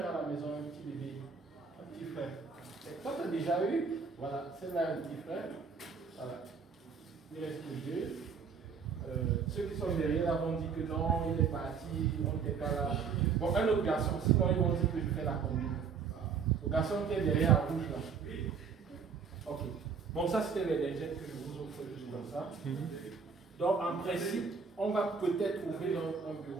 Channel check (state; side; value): quieter; left; 5.8 dB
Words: à la maison, un petit bébé? Un petit frère. Et toi, tu as déjà eu? Voilà, c'est là un petit frère. Voilà. Il reste deux. Ceux qui sont derrière là vont dire que non, il est parti, on n'était pas là. Bon, un autre garçon, sinon ils vont dire que je fais la combine. Le garçon qui est derrière en rouge là. Ok. Bon, ça c'était les lingettes que je vous offre juste comme ça. Donc en principe, on va peut-être ouvrir un